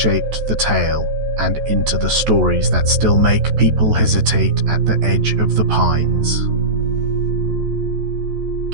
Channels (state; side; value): late; left; 14 ms